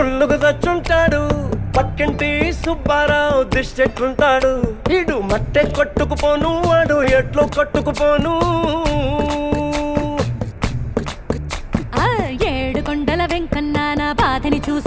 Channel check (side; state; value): both; identical; correlation 1.00